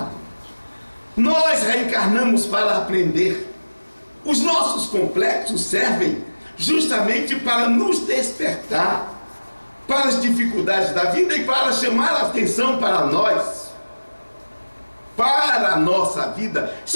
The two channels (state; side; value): inverted; both; correlation -1.00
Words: Nós reencarnamos para aprender. Os nossos complexos servem justamente para nos despertar para as dificuldades da vida e para chamar a atenção para nós, para a nossa vida.